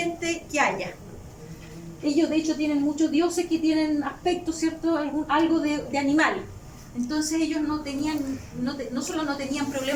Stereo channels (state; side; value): identical; both; correlation 1.00